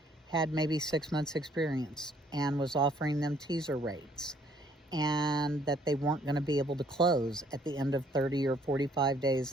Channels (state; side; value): normal; both; correlation 0.63